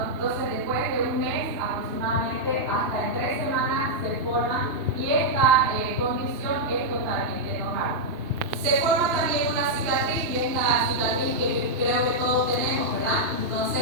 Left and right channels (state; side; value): late; left; 2.9 ms